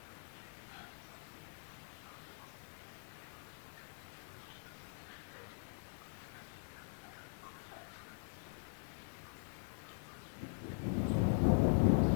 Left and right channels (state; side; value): silent; right; digital silence